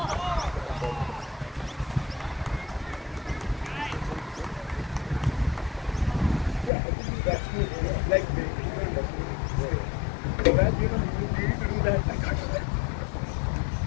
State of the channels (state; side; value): drops out; right; at 6.7 s